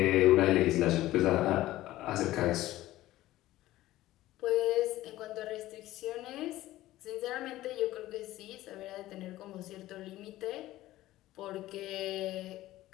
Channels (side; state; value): right; quieter; 15.8 dB